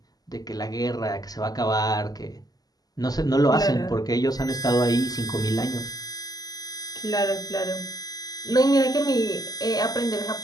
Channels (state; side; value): late; right; 0.18 ms